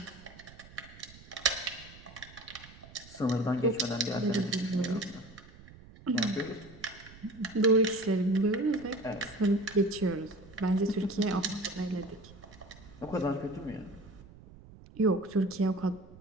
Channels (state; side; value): noise; right; rumble, 20 dB below the sound